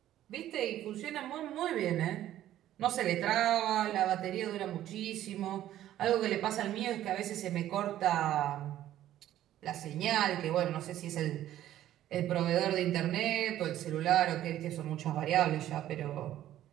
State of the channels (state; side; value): quieter; left; 12.8 dB